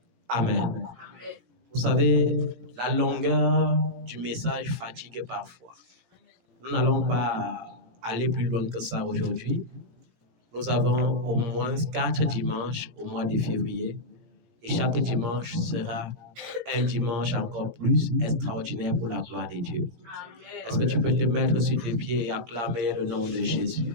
Amen. Vous savez, la longueur du message fatigue parfois. Nous n'allons pas aller plus loin que ça aujourd'hui. Nous avons au moins 4 dimanches au mois de février et chaque dimanche sera un dimanche encore plus extraordinaire pour la gloire de Dieu. Est-ce que tu peux te mettre sur tes pieds et acclamer le nom de Jésus?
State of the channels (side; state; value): left; late; 17 ms